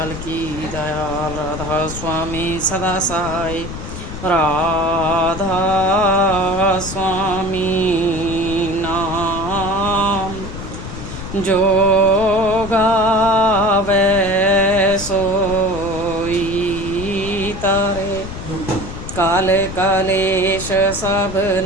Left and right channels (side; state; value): left; noise; rumble, 9 dB below the sound